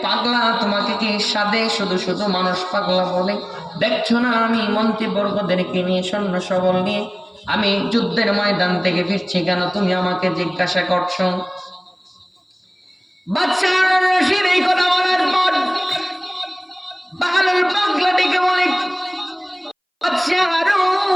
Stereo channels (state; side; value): identical; both; correlation 1.00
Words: পাগলা, তোমাকে কি সাদে শুধু শুধু মানুষ পাগলা বলে? দেখছো না আমি মন্ত্রীবর্গদেরকে নিয়ে, সৈন্য সবল নিয়ে আমি যুদ্ধের ময়দান থেকে ফিরছি, কেন তুমি আমাকে জিজ্ঞাসা করছো? বাদশাহ হারুনুর রশিদ এই কথা বলার পর বাহলুল পাগলা ডেকে বলে, বাদশাহ হারুন,